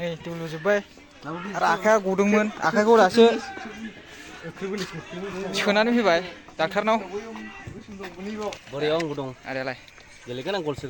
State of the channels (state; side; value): identical; both; correlation 1.00